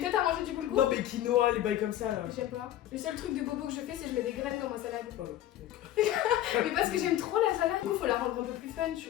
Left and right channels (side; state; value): right; quieter; 12.9 dB